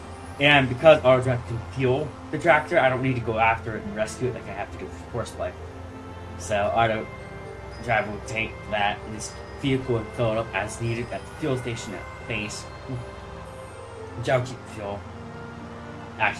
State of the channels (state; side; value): identical; both; correlation 1.00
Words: And because auto drive can fuel the tractor, I don't need to go after it and rescue it like I have to do for horseplay. So auto drive will take that and this vehicle and fill it up as needed at the fuel station at base. Which I'll keep the fuel.